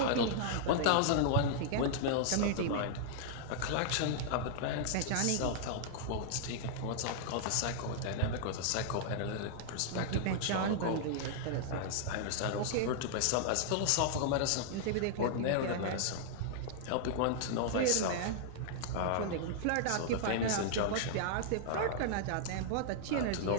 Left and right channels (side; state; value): both; different; correlation -0.01